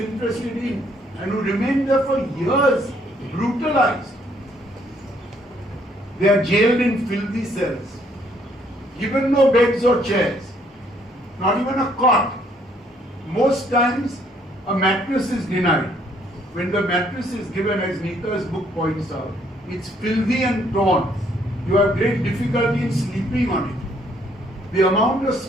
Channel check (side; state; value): both; normal; correlation 0.67